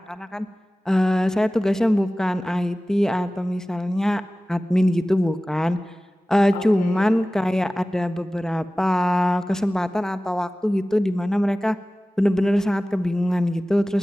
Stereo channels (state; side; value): normal; both; correlation 0.97